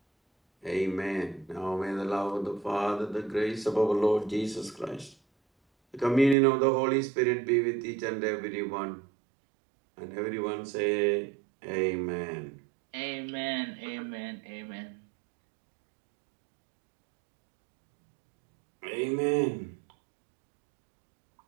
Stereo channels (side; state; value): left; drops out; at 6.4 s